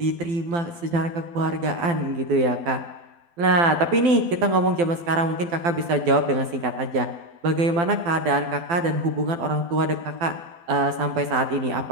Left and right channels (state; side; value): late; left; 12 ms